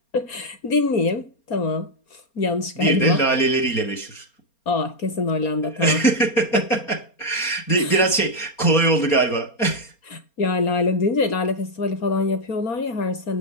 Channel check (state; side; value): late; right; 4.3 ms